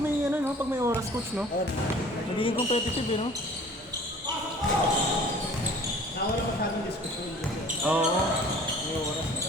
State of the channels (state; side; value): normal; both; correlation 0.48